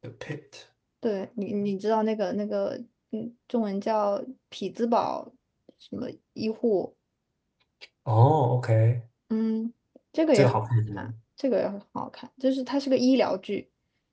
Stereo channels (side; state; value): both; identical; correlation 1.00